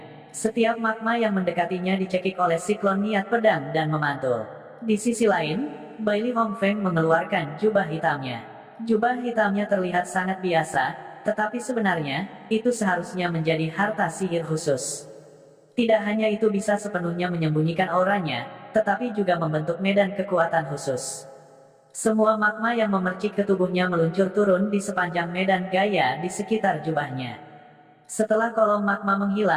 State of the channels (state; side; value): identical; both; correlation 1.00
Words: Setiap magma yang mendekatinya dicekik oleh siklon niat pedang dan memantul. Di sisi lain, Bailey Hongfeng mengeluarkan jubah hitamnya. Jubah hitamnya terlihat sangat biasa, tetapi sebenarnya, itu seharusnya menjadi harta sihir khusus. Tidak hanya itu bisa sepenuhnya menyembunyikan auranya, tetapi juga membentuk medan kekuatan khusus. Semua magma yang memercik ke tubuhnya meluncur turun di sepanjang medan gaya di sekitar jubahnya. Setelah kolom magma